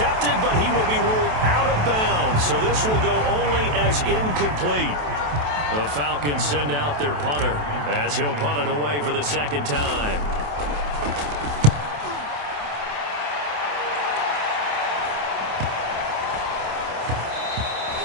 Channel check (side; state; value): left; late; 27 ms